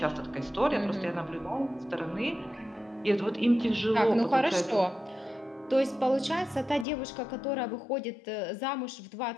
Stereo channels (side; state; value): right; drops out; at 6.9 s